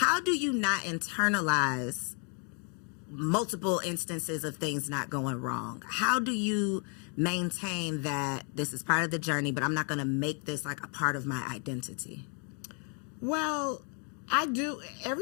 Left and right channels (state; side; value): quieter; right; 38.9 dB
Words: do you not internalize multiple instances of things not going wrong? How do you maintain that this is part of the journey, but I'm not going to make this like a part of my identity? Well, I do.